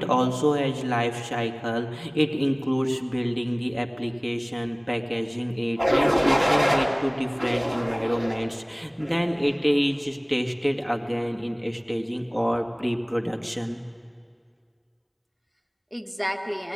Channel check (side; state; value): both; identical; correlation 1.00